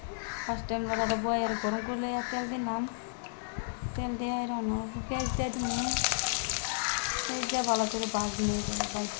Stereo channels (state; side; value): silent; right; digital silence